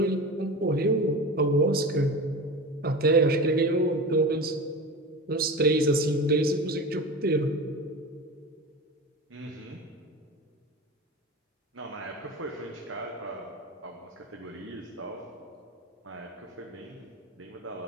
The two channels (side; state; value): both; normal; correlation 0.29